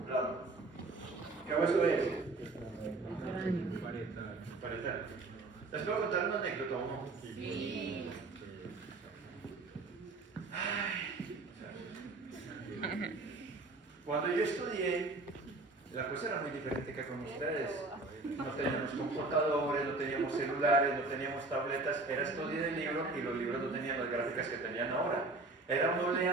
templado. ¿Qué hueso es? Parietal. Parietal. ¿Les puedo contar una anécdota o no? Sí. Cuando yo estudié, la cosa era muy diferente que con ustedes. No teníamos computadores, no teníamos celulares, no teníamos tabletas, era estudio de libros y los libros no tenían las gráficas que tenían ahora. Era uno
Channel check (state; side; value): quieter; left; 3.3 dB